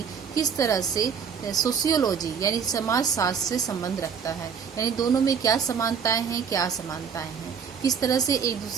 किस तरह से सोशियोलॉजी यानी समाज शास्त्र से संबंध रखता है, यानी दोनों में क्या समानताएं हैं, क्या असमानताएं हैं, किस तरह से एक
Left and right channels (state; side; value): quieter; left; 6.8 dB